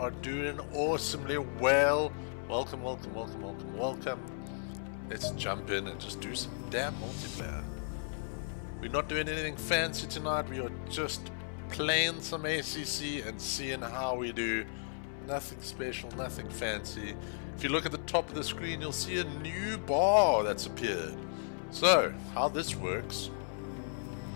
doing awesomely well. Welcome, welcome, welcome, welcome, welcome. Let's jump in and just do some damn multiplayer. We're not doing anything fancy tonight. We are just playing some ACC and seeing how we do. Nothing special, nothing fancy. If you look at the top of the screen, you'll see a new bar that's appeared. So, how this works,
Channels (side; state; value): right; silent; 55 dB below the other